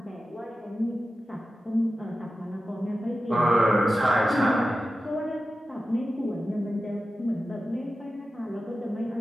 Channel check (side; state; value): both; normal; correlation 0.93